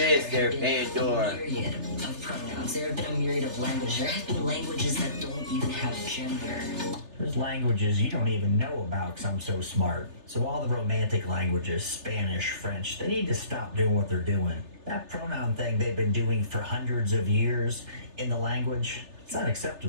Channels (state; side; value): late; left; 3.3 ms